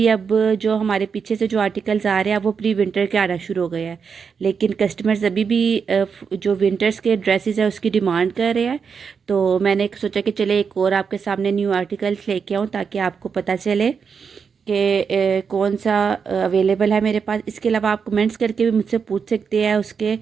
अब जो हमारे पीछे से जो आर्टिकल्स आ रहे हैं वो प्री विंटर के आना शुरू हो गए हैं, लेकिन कस्टमर्स अभी भी जो विंटर्स के ड्रेसेस है उसकी डिमांड कर रहे हैं। तो मैंने सोचा कि चले एक और आपके सामने न्यू आर्टिकल्स लेके आऊँ ताकि आपको पता चले कि कौन सा अवेलेबल है मेरे पास। इसके अलावा आप कमेंट्स करके भी मुझसे पूछ सकते हैं, उसके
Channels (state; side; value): quieter; left; 6.1 dB